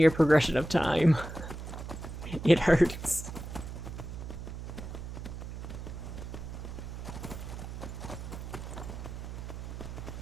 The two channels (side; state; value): right; noise; hum, 8 dB below the sound